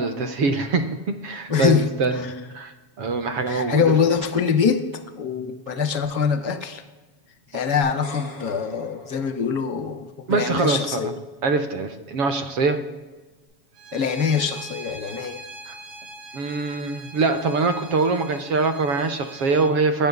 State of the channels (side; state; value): left; late; 7.2 ms